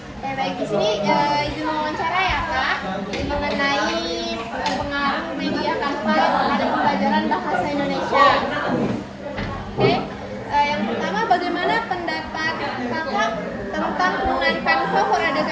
Baik, di sini izin wawancara ya Kak, mengenai pengaruh media Canva terhadap pembelajaran bahasa Indonesia. Oke, yang pertama bagaimana pendapat Kakak tentang penggunaan Canva for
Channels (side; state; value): both; identical; correlation 1.00